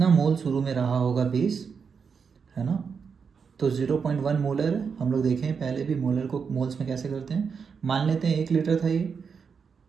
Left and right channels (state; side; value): quieter; left; 6.0 dB